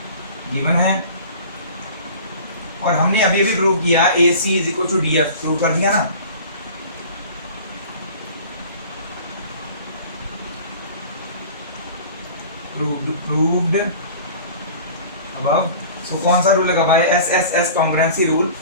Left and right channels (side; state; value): both; inverted; correlation -0.42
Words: गिवन है। और हमने अभी अभी प्रूव किया AC is equal to DF, prove कर दिया ना। proved above। so कौन सा रूल लगा भाई, SSS congruency rule,